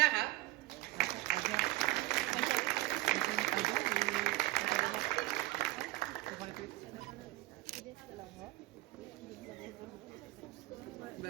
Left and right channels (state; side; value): quieter; left; 19.1 dB